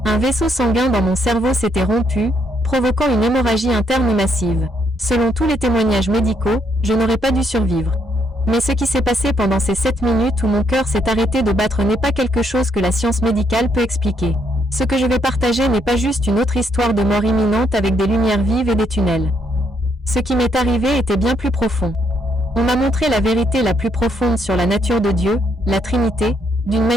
Un vaisseau sanguin dans mon cerveau s'était rompu, provoquant une hémorragie interne massive. Selon tous les témoignages médicaux, je n'aurais pas dû survivre. Mais ce qui s'est passé pendant ces 7 minutes où mon cœur s'est arrêté de battre n'est pas quelque chose que la science médicale peut expliquer. Ce que je vais partager n'est pas juste une autre histoire de mort imminente avec des lumières vives et des tunnels. Ce qui m'est arrivé était bien plus profond. On m'a montré la vérité la plus profonde sur la nature de Dieu, la Trinité, d'une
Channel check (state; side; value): normal; both; correlation 0.74